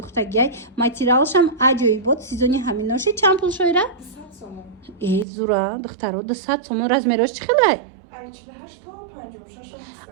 материалшам аҷоибот сезони ҳаминоши чанд пул шоира зура духтаро 200 сомон размерош чӣ хелай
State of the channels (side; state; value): left; drops out; at 5.2 s